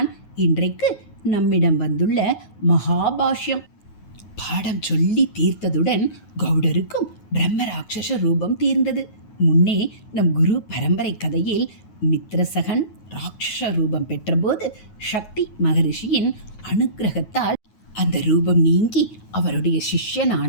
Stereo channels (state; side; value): late; right; 9.4 ms